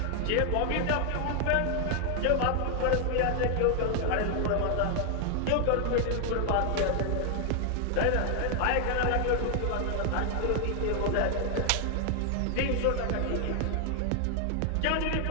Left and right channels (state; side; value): different; both; correlation 0.00